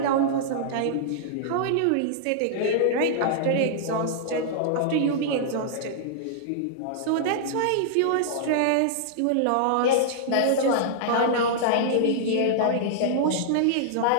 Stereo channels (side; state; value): both; different; correlation -0.01